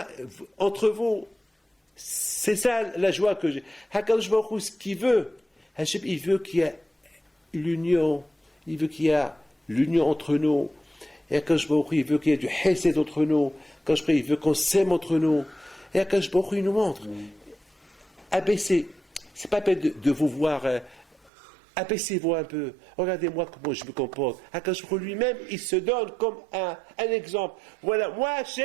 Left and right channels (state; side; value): drops out; left; at 21.3 s